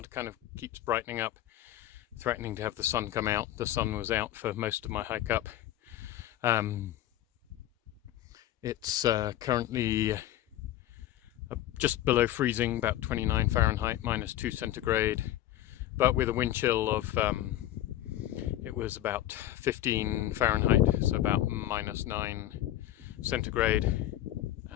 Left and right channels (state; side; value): quieter; right; 13.4 dB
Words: kind of keeps brightening up, threatening to have the sun come out. The sun was out for most of my hike up. It's currently just below freezing, about 29 Fahrenheit, -2 centigrade, but with a wind chill of, it was about 15 Fahrenheit, so about -9 centigrade.